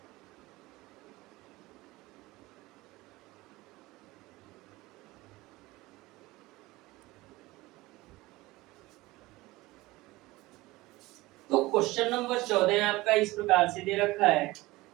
तो क्वेश्चन नंबर 14 आपका इस प्रकार से दे रखा है,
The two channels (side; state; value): left; quieter; 19.8 dB